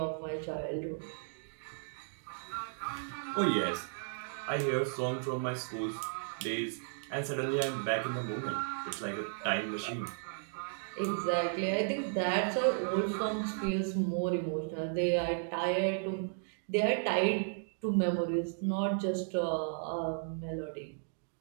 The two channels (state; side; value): silent; left; digital silence